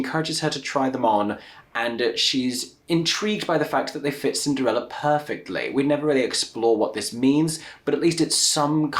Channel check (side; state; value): both; identical; correlation 1.00